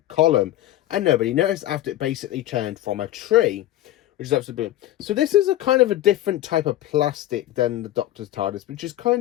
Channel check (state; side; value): quieter; right; 14.4 dB